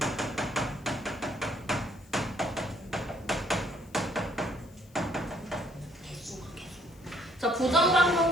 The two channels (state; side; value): noise; left; hiss, 28 dB below the sound